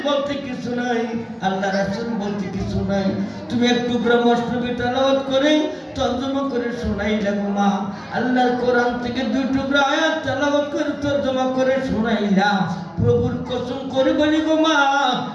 বলতে কিছু নাই, আল্লাহ রাসূল বলতে কিছু নাই। তুমি এক টুকরা মসনবী তেলাওয়াত করে তরজমা করে শোনাইলা গো মা। আল্লাহর কোরআন থেকে 2 টুকরা আয়াত তেলাওয়াত করে তরজমা করে শোনাইলা। প্রভুর কসম করে বলি গো মা,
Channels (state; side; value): identical; both; correlation 1.00